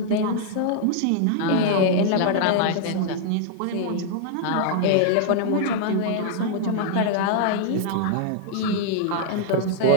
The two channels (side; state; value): both; different; correlation 0.00